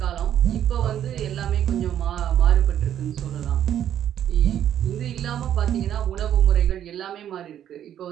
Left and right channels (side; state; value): left; quieter; 10.5 dB